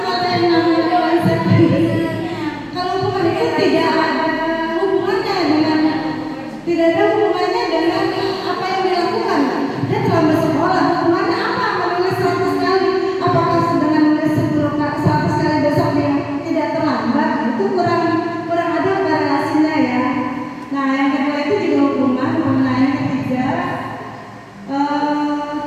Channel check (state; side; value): identical; both; correlation 1.00